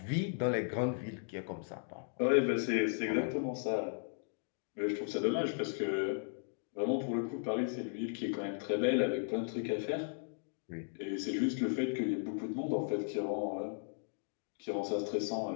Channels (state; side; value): silent; right; digital silence